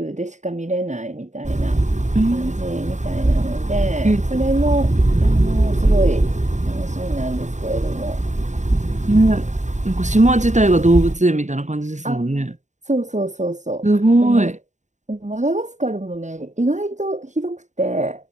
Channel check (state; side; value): late; left; 0.35 ms